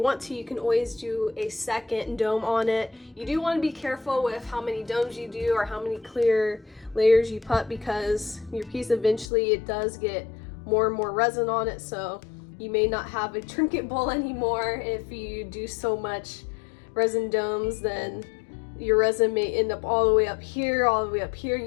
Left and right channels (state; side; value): drops out; right; at 9.3 s